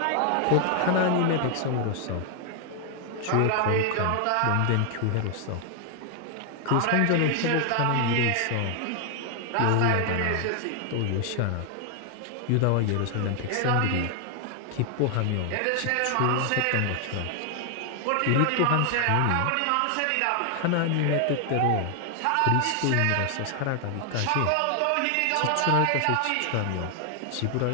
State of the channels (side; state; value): both; different; correlation 0.00